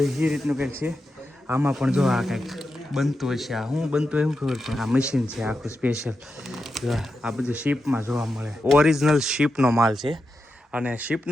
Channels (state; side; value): normal; both; correlation 0.88